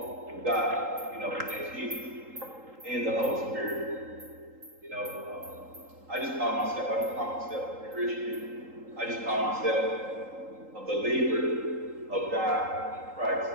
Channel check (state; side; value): late; left; 3.8 ms